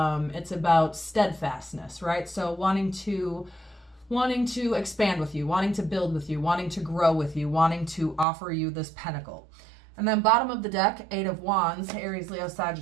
about steadfastness, right? So wanting to expand with you, wanting to build with you, wanting to grow with you, wanting to offer you this pentacle. And then bottom of the deck, Eight of Wands, Aries, Leo,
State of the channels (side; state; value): left; drops out; at 8.2 s